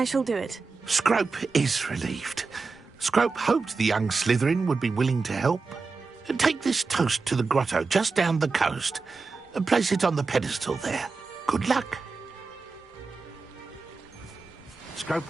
shall do it. Scrope is relieved. Scrope hoped the young Slytherin would be willing to help. Take this toast to the grotto just down the coast and place it on the pedestal there. Good luck. Scrope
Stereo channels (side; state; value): left; quieter; 4.3 dB